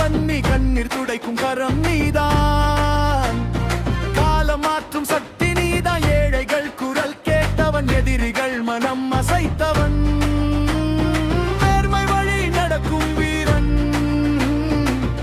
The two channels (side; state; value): both; identical; correlation 1.00